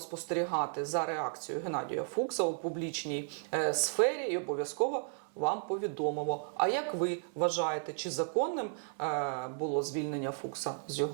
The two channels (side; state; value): left; silent; 55 dB below the other